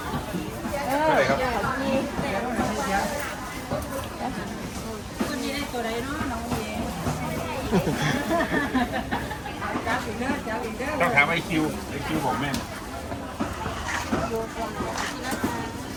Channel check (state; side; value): identical; both; correlation 1.00